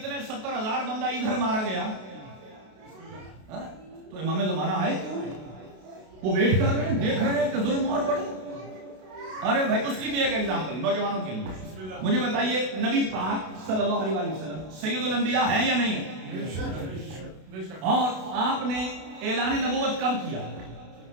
70,000 بندہ ادھر مارا گیا. تو امام زمانہ آئے کیوں؟ وہ ویٹ کر رہے ہیں، دیکھ رہے ہیں کہ ظلم اور بڑھے. ارے بھائی، اس کی بھی ایک ایگزامپل نوجوانوں کے لیے. مجھے بتائیے، نبی پاک صلی اللہ علیہ وسلم سید الانبیاء ہیں یا نہیں؟ اور آپ نے اعلان نبوت کب کیا؟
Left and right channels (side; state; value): left; late; 32 ms